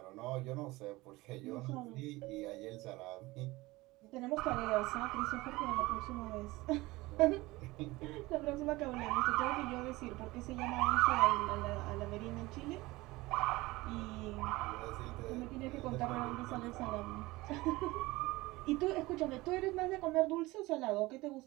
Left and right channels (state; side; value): quieter; left; 20.5 dB